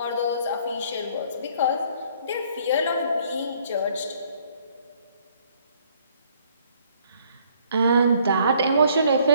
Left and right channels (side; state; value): both; inverted; correlation -0.63